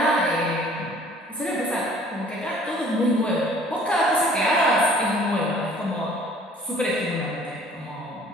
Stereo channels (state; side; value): normal; both; correlation 0.53